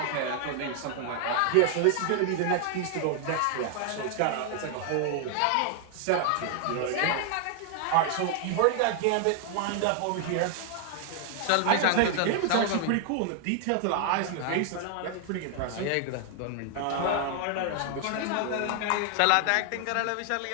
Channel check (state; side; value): different; both; correlation 0.00